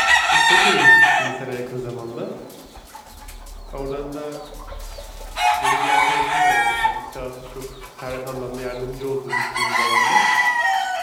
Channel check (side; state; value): both; identical; correlation 1.00